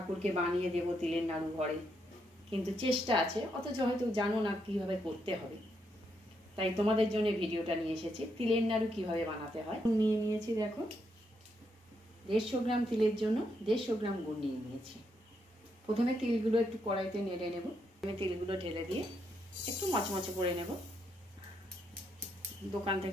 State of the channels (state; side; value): normal; both; correlation 0.78